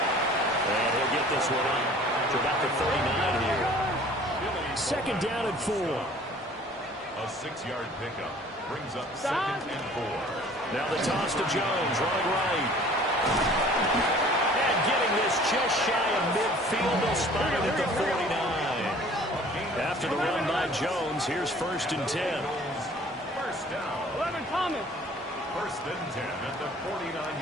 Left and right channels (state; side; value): normal; both; correlation 0.50